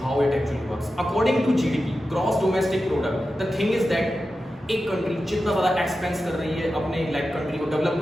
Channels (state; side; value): normal; both; correlation 0.92